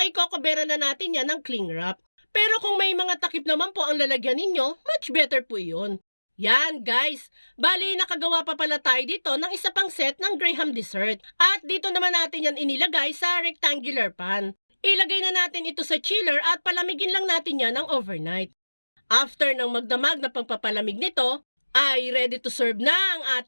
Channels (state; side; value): inverted; both; correlation -1.00